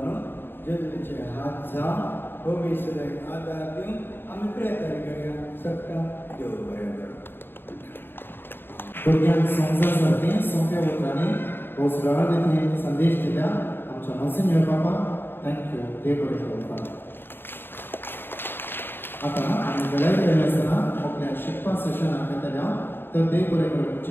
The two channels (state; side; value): late; right; 0.10 ms